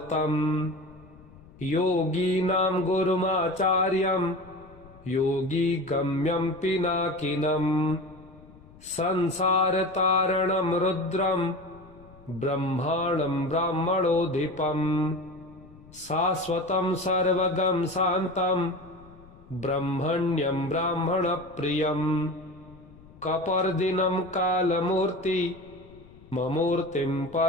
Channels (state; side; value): noise; left; rumble, 23 dB below the sound